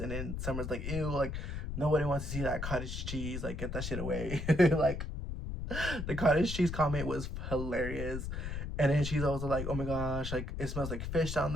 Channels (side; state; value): left; noise; rumble, 5 dB below the sound